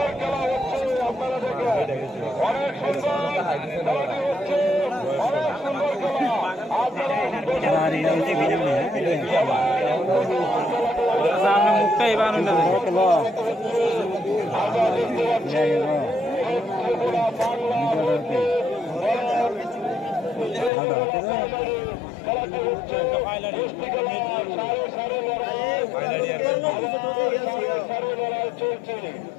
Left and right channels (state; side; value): drops out; right; at 20.7 s